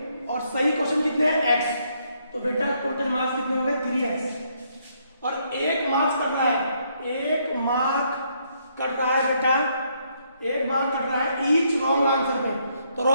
और सही क्वेश्चन कितने हैं? x, तो बेटा टोटल मार्क्स कितने हो गए? 3x। और 1 मार्क्स कट रहा है, 1 मार्क कट रहा है बेटा, 1 मार्क कट रहा है ईच रॉन्ग आंसर पे, तो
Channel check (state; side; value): inverted; both; correlation -0.72